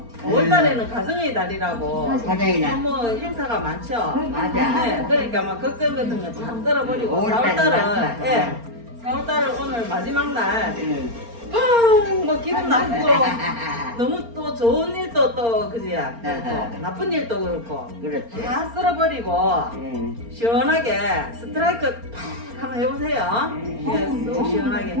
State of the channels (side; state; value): left; late; 4.3 ms